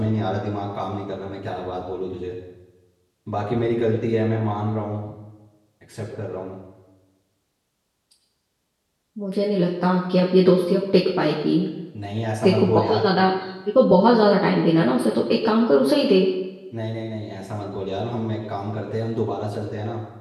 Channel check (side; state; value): both; identical; correlation 1.00